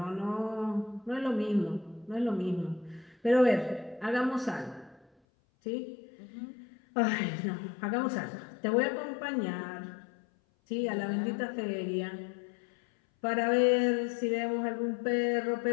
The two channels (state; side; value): drops out; right; at 5.1 s